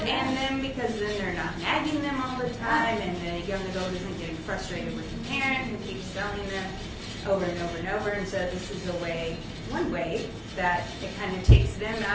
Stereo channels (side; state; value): both; identical; correlation 1.00